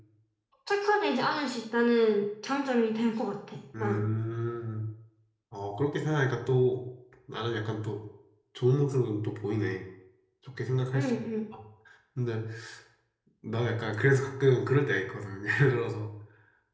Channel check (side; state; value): both; identical; correlation 1.00